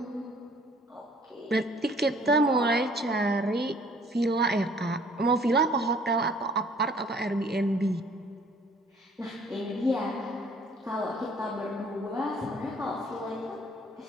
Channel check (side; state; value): both; normal; correlation 0.57